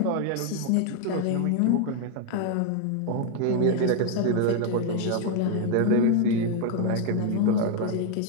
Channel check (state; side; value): different; both; correlation 0.00